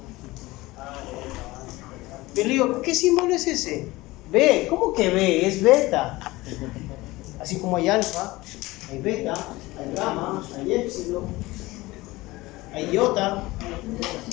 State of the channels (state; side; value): quieter; right; 20.0 dB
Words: Pero digo, ¿qué símbolo es ese? B. ¿Cómo que B? Es beta. Así como hay alfa, hay beta, hay gamma, hay épsilon, hay iota.